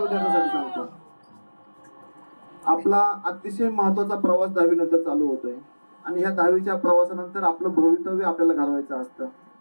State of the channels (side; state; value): both; inverted; correlation -1.00